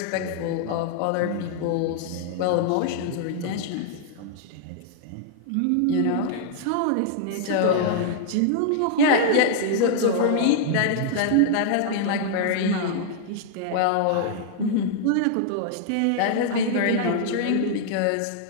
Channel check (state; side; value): different; both; correlation -0.01